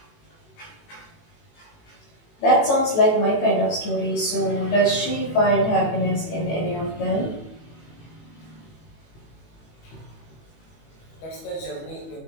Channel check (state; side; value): late; right; 18 ms